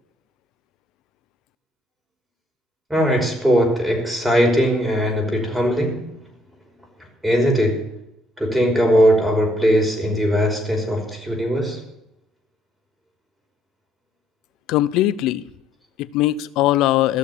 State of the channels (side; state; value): both; normal; correlation 0.67